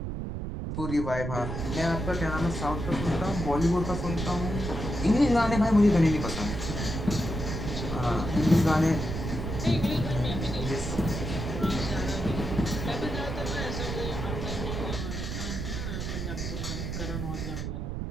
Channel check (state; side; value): noise; right; rumble, 4 dB below the sound